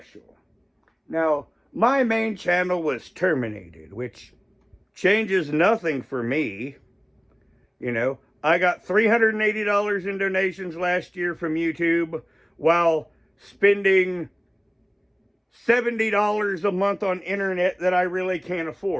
Now, my main channel was terminated, which changes nothing for me. You know, I got $380 in donations last year from YouTube while spending $70 a month on internet that I really can't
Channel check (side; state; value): both; identical; correlation 1.00